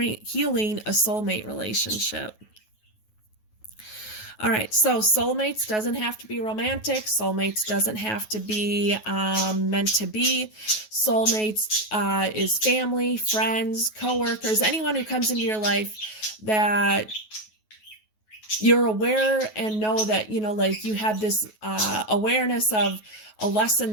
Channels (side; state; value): right; late; 9.3 ms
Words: a soulmate relationship. All right, so soulmates doesn't have to be romantic. Soulmates doesn't have to be meant to be. Soulmates is family, friends, coworkers, anyone who comes into your life that you're aware and know that, you have this awareness of a lesson